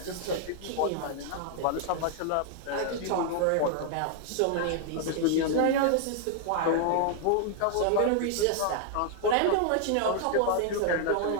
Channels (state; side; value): different; both; correlation 0.00